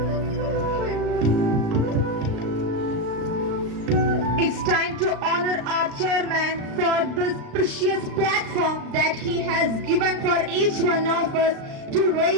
It's time to honor our chairman for this precious platform that he has given for each one of us to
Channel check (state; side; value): late; left; 36 ms